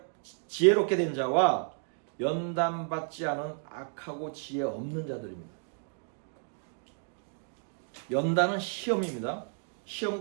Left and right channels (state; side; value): silent; left; 57 dB below the other